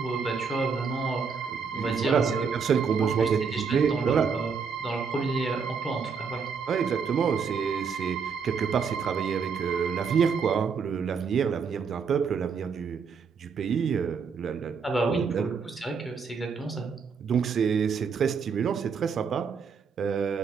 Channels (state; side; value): quieter; left; 5.8 dB